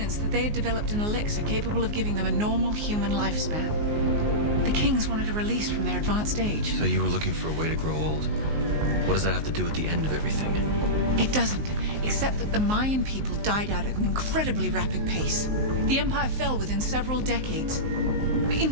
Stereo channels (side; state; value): left; late; 19 ms